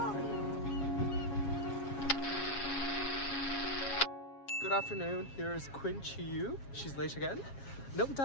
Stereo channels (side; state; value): right; late; 7.3 ms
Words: Good afternoon, here is Qiyu. She's late again, no